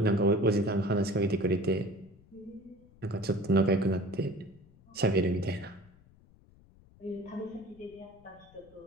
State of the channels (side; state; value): left; noise; rumble, 27 dB below the sound